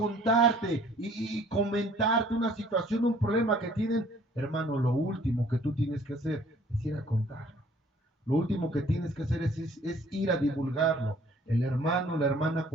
y comentarte una situación, un problema que tienen, hermano, lo último que tú tienes que hacer es ir a contarlo. Lo último que tienes que hacer es ir a divulgarlo. El hermano o la hermana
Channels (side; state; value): both; normal; correlation 0.57